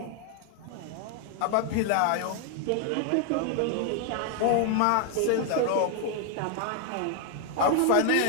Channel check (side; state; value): both; different; correlation 0.00